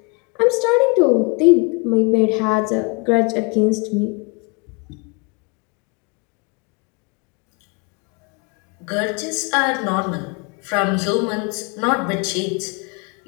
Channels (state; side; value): quieter; right; 29.9 dB